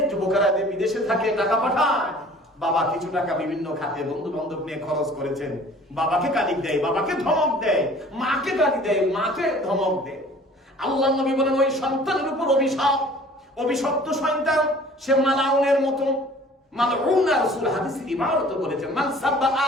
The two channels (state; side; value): normal; both; correlation 0.49